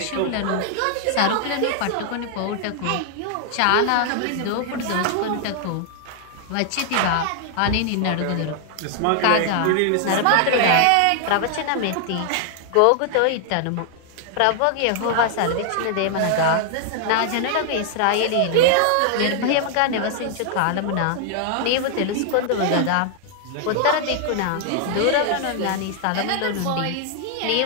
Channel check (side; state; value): both; different; correlation 0.00